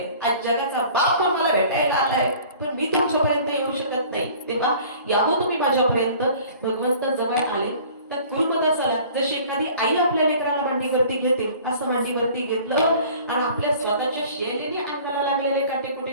आज जगाचा बाप मला भेटायला आलाय पण मी तुमच्यापर्यंत येऊ शकत नाही. तेव्हा यावं तुम्ही माझ्यापर्यंत. भगवंत जवळ आले तर गुरुदासाला जशी एखादी आई आपल्या लेकराला मांडीवरती घेते असं मांडीवरती घेतलं आणि आपल्या स्वतःच्या शैलीने अंगाला लागलेले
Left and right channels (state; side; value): inverted; both; correlation -0.48